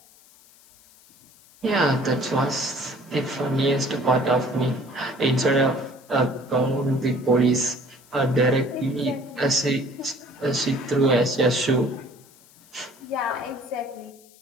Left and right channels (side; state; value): left; noise; hiss, 27 dB below the sound